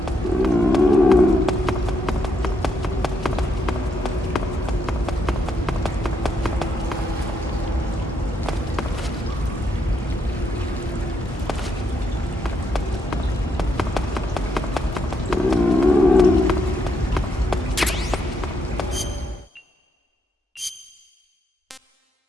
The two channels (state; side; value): normal; both; correlation 0.77